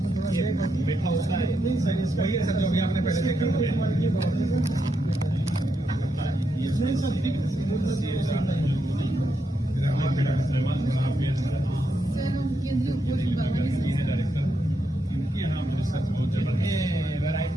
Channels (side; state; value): both; normal; correlation 0.82